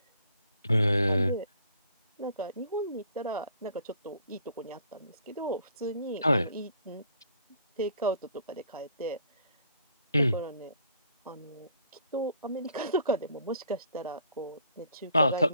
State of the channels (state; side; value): inverted; both; correlation -0.60